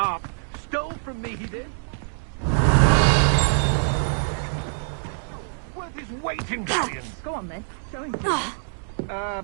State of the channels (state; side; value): silent; left; digital silence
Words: Stole from me, he did. Worth his weight in billions. Go on, then. Show him.